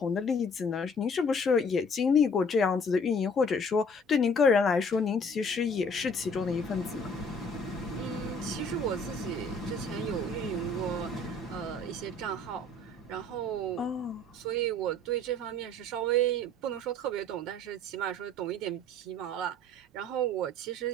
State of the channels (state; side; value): normal; both; correlation 0.55